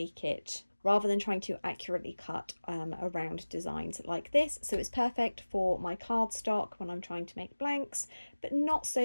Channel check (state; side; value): inverted; both; correlation -1.00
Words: accurately cut around designs like this. So it's perfect for my cardstock when I'm trying to make blanks, but not